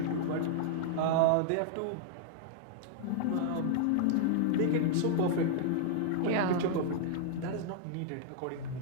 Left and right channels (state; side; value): different; both; correlation -0.01